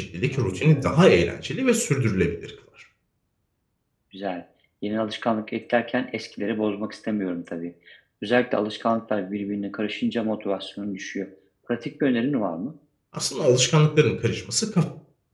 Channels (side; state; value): both; identical; correlation 1.00